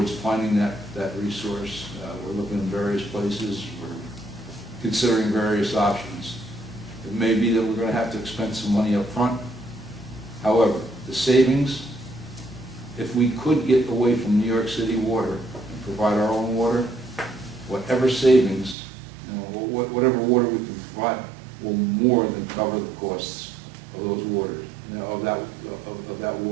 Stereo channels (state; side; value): drops out; left; at 18.8 s